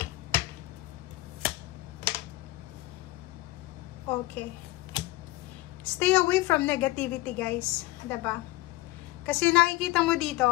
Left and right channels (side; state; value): right; quieter; 19.2 dB